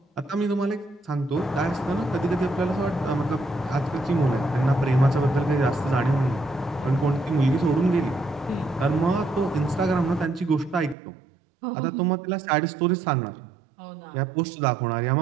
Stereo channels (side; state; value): left; drops out; at 11.0 s